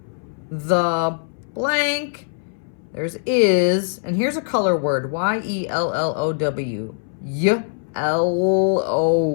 the blank. There's is, and here's a color word, Y-E-L-L-O-W. Y-L-O,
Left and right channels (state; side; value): silent; right; 64 dB below the other